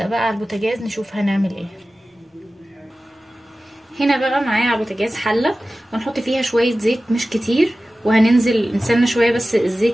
بقى على البوتاجاز نشوف هنعمل ايه. هنا بقى معايا على البوتاجاز حلة، وهنحط فيها شوية زيت مش كتير، وهننزل نستنى شوية بس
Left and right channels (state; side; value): normal; both; correlation 0.96